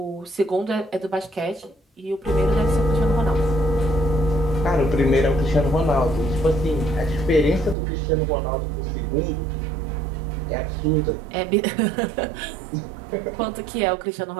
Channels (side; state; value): left; drops out; at 7.8 s